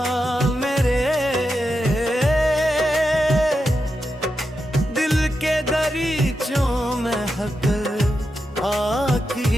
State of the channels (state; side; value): normal; both; correlation 0.87